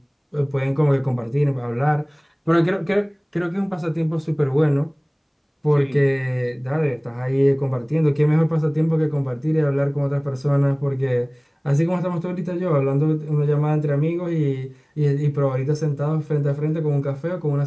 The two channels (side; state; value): both; identical; correlation 1.00